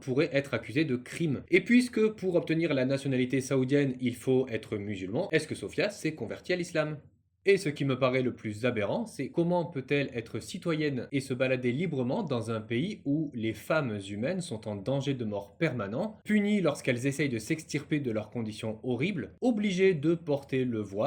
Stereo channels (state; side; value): identical; both; correlation 1.00